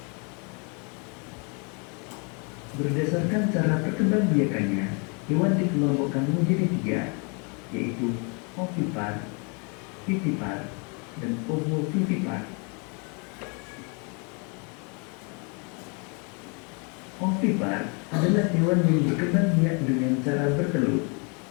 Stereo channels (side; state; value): right; quieter; 34.5 dB